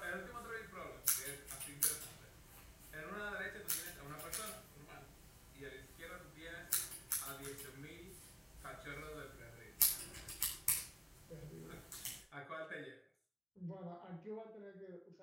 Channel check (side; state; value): both; identical; correlation 1.00